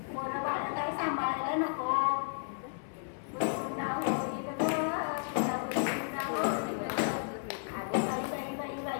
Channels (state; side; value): silent; right; 56 dB below the other